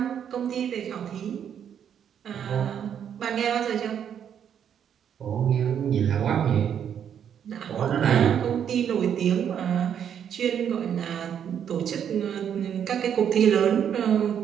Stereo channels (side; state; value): left; quieter; 8.7 dB